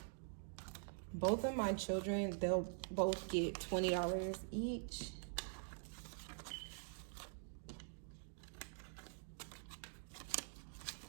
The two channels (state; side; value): silent; left; digital silence